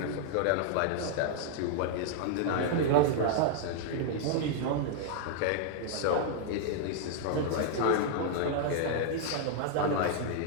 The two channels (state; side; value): different; both; correlation -0.01